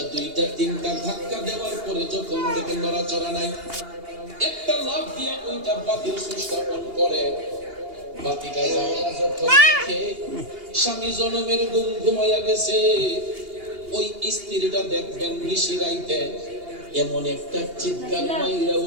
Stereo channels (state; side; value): late; left; 2.8 ms